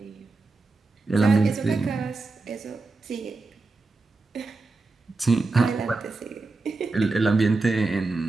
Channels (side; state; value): left; quieter; 3.6 dB